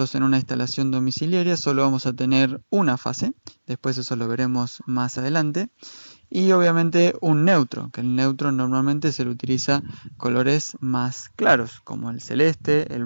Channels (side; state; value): both; inverted; correlation -1.00